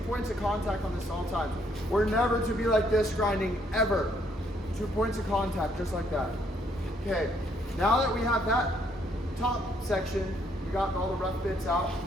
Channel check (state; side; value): normal; both; correlation 0.69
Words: of contact on this all times. We're never to be like this grinding, ever. 2 points of contact, just like that. Okay, now that we have that top section, we got all the rough bits out,